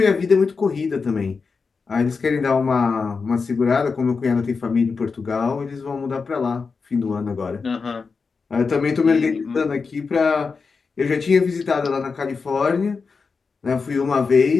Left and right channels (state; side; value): quieter; right; 4.9 dB